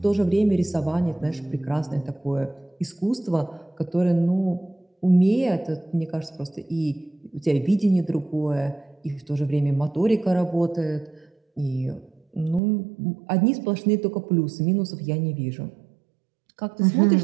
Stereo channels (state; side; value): drops out; left; at 12.6 s